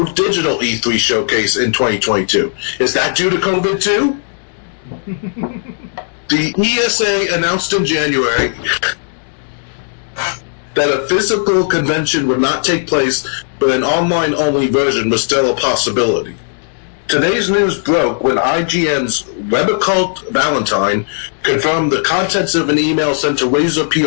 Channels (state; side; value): silent; right; digital silence